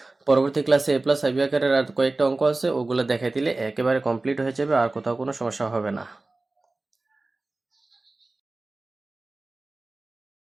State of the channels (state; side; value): quieter; left; 3.2 dB